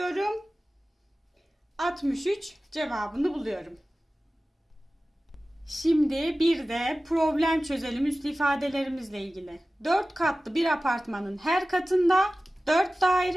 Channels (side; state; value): both; normal; correlation 0.96